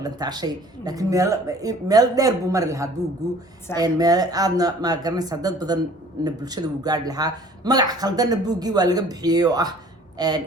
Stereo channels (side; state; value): both; normal; correlation 0.51